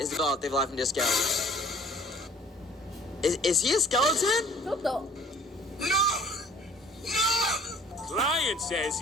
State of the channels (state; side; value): normal; both; correlation 0.52